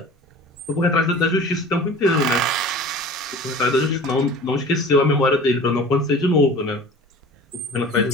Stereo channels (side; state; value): both; normal; correlation 0.41